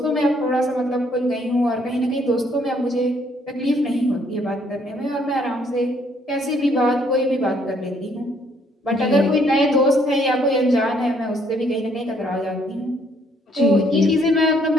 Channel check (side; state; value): both; normal; correlation 0.67